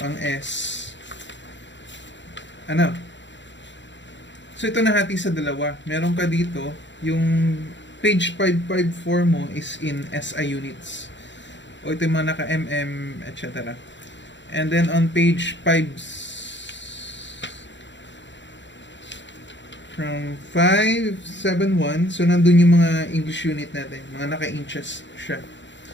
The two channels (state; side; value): late; right; 0.53 ms